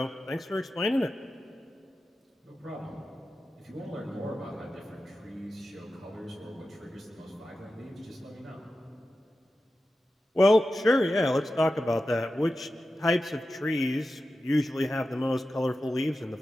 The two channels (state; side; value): normal; both; correlation 0.92